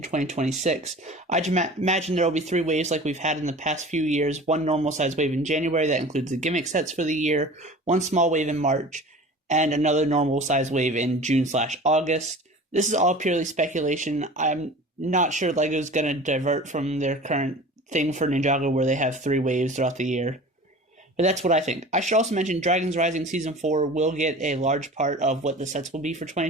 2026. I'd imagine there will be 3 waves like we've had in the past few years, 1 normal size wave in January that includes the gimmick sets for the year, 1 small wave in March, and another normal size wave in June/August. This is all purely speculation. I'm not sure LEGO's going to divert from their current thing for Ninjago where they have 3 waves throughout the year. But that's what I think. I should also mention Dragons Rising Season 4 will get a large part of what the sets will be for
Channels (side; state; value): both; normal; correlation 0.40